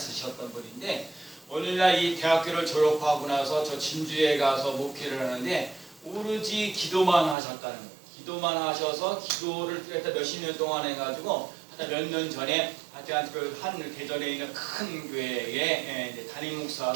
분인데, 오늘날 이 대학교를 졸업하고 나서 저 진주에 가서 목회를 하는데 오로지 기도만 하셨다는 거예요. 기도만 하셔서 기도를 몇십 년 동안 해가지고 몇 년 전에 한 대전에 있는 큰 교회에 담임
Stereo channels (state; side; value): drops out; left; at 7.4 s